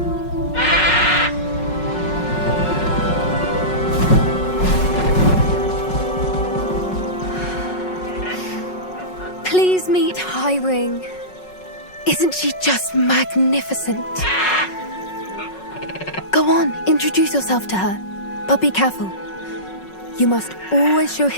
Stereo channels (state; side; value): late; right; 5.4 ms